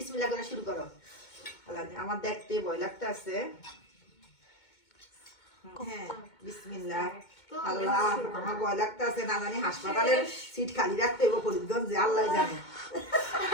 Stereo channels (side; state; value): right; late; 2.2 ms